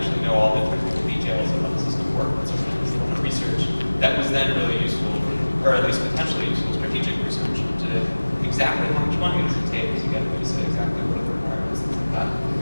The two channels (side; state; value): both; inverted; correlation -1.00